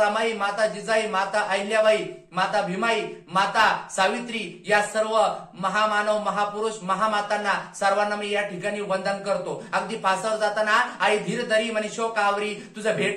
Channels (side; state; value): both; identical; correlation 1.00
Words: माता जिजाई, माता अहिल्याबाई, माता भीमाई, माता सावित्री या सर्व महामानव महापुरुष महामातांना सर्वांना मी या ठिकाणी वंदन करतो. अगदी फासावर जाताना आई धीर धरी म्हणे शोक आवरी, तुझं